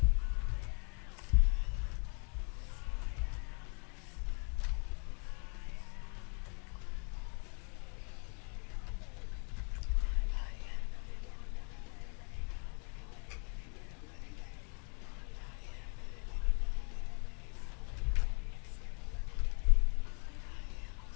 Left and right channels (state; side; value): quieter; right; 39.0 dB